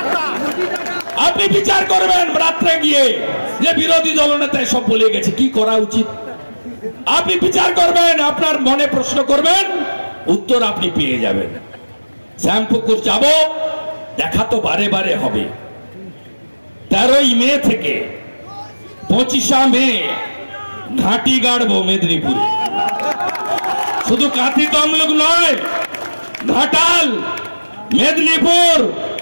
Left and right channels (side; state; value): both; inverted; correlation -1.00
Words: আপনি বিচার করবেন রাত্রে গিয়ে যে বিরোধী দলনেতা সব বলে গেছে, কি করা উচিত। আপনি বিচার করবেন, আপনার মনে প্রশ্ন করবেন, উত্তর আপনি পেয়ে যাবেন। শ্যামপুকুর যাব, দেখা তো বারে বারে হবে। 13ই মে থেকে 25 মে ঘাঁটি গাড়বো মেদিনীপুরে। শুধু কাঁথি তমলুক নয়, ঘাটাল, মেদিনীপুর,